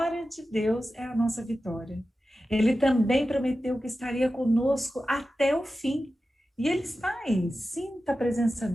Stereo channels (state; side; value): normal; both; correlation 0.93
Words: de Deus é a nossa vitória. Ele também prometeu que estaria conosco até o fim. E ele está aí. Sinta a presença